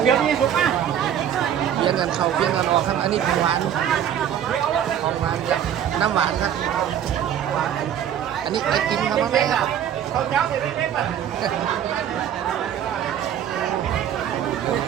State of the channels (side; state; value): left; quieter; 9.7 dB